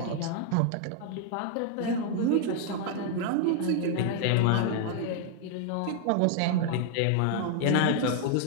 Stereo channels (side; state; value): both; different; correlation 0.00